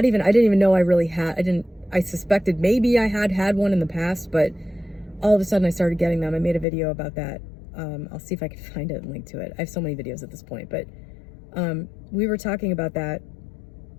didn't even know I really had. I suspected maybe I had one in the past, but all of a sudden I started getting them. I made a video about that. I'll see if I can find it and link to it. I have so many videos at this point, but we were talking about that,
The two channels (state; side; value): drops out; right; at 6.7 s